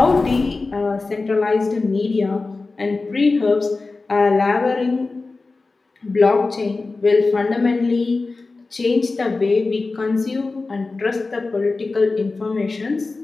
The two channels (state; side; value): quieter; right; 3.7 dB